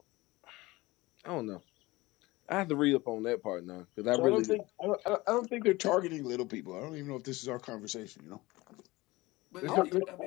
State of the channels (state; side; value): quieter; right; 20.6 dB